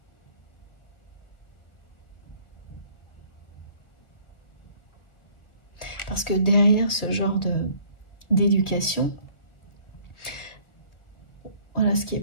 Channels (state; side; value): late; right; 1.6 ms